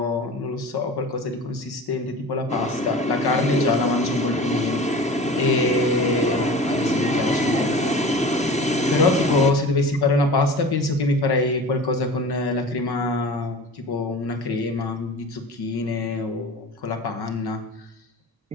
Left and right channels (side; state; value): both; normal; correlation 0.37